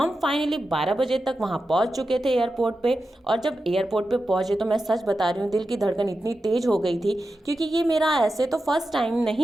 फाइनली 12 बजे तक वहाँ पहुँच चुके थे एयरपोर्ट पे। और जब एयरपोर्ट पे पहुँचे तो मैं सच बता रही हूँ, दिल की धड़कन इतनी तेज हो गई थी, क्योंकि ये मेरा ऐसे तो फर्स्ट टाइम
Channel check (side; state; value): both; normal; correlation 0.91